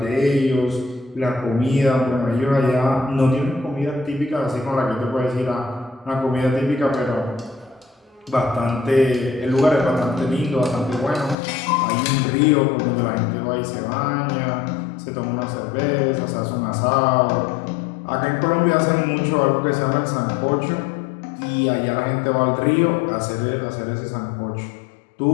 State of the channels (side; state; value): right; drops out; at 11.4 s